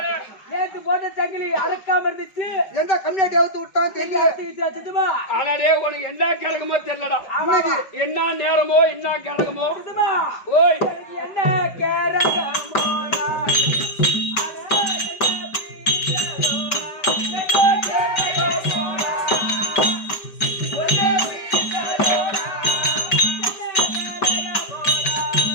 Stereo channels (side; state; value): right; late; 5.2 ms